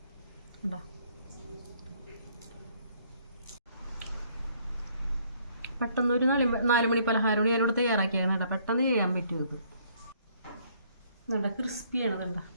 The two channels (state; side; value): inverted; both; correlation -0.65